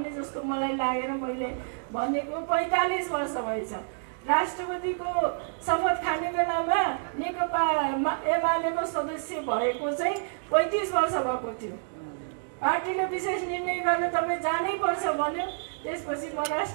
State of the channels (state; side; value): silent; left; digital silence